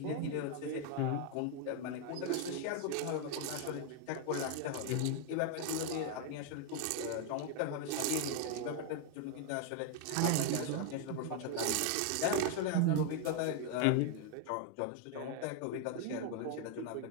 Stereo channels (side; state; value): both; different; correlation 0.01